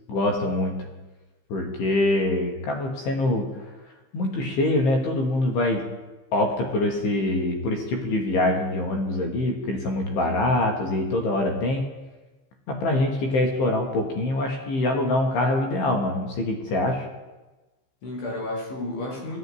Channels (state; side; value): late; right; 15 ms